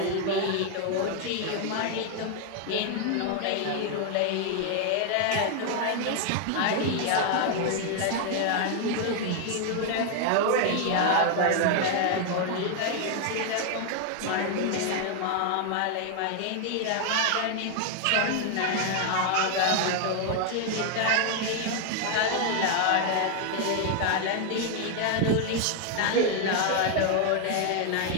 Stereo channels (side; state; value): both; different; correlation 0.00